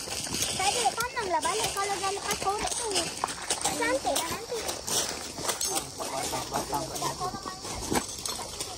Balik kalau dah lepas korek tu. Cantik dah nanti.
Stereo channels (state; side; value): identical; both; correlation 1.00